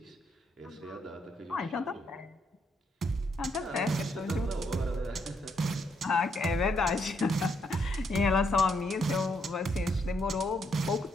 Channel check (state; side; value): normal; both; correlation 0.75